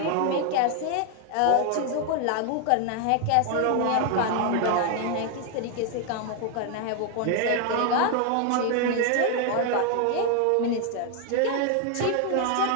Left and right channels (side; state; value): both; different; correlation 0.00